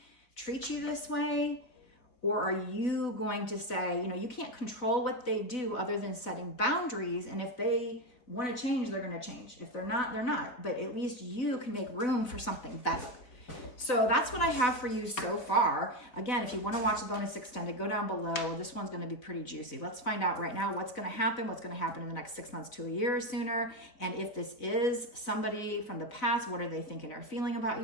treat you this way? Or are you going to say, you know, you can't control what they do other than setting boundaries. And if they want to change, they're going to change. If they're not, they're not. But at least you can make room for something better. So that's what I have for you so far. Again, if you want to watch the bonus extended, go down below. This one's going to be pretty juicy. Let's find out right now what's going to happen in the next 6 months to a year or sooner. And if this is somebody from the past, what are they thinking or feeling about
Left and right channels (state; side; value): late; right; 4.0 ms